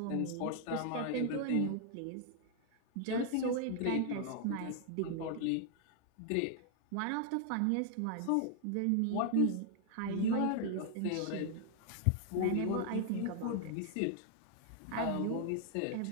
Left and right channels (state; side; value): different; both; correlation 0.00